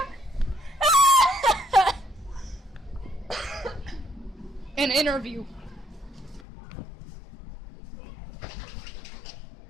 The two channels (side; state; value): right; drops out; at 6.5 s